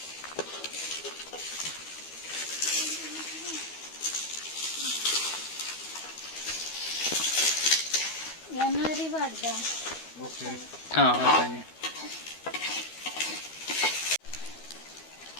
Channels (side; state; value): right; late; 13 ms